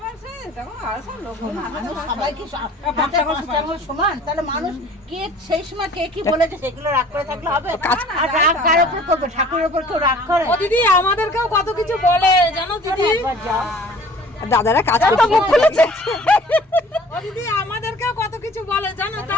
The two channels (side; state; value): both; normal; correlation 0.50